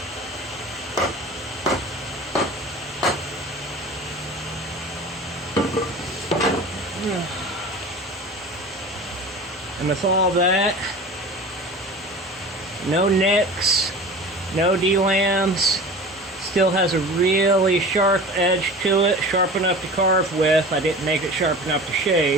And with all that, no nicks, no D-lambs, still has a really sharp edge to it, sharp enough to carve with. I didn't make it sharp enough to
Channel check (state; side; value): normal; both; correlation 0.37